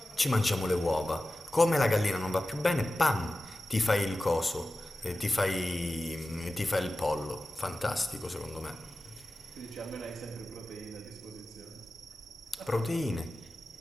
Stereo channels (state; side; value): normal; both; correlation 0.95